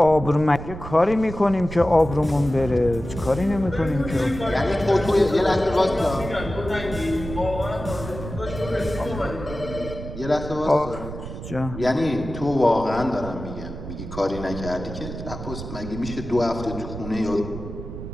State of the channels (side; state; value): right; noise; rumble, 9 dB below the sound